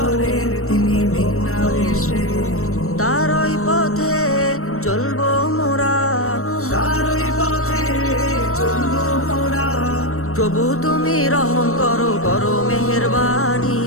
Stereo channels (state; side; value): late; right; 0.63 ms